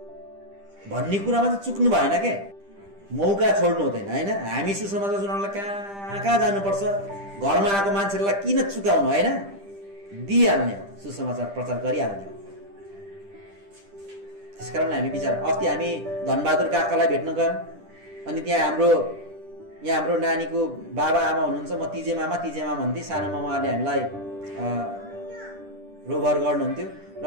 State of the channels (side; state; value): left; late; 10 ms